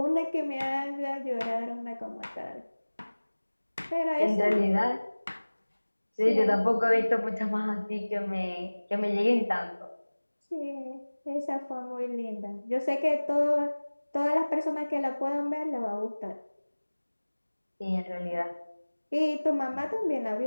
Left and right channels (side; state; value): both; inverted; correlation -1.00